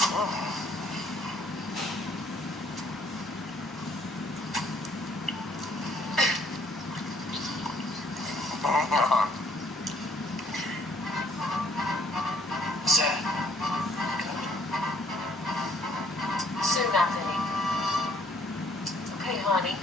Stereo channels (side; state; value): both; normal; correlation 0.65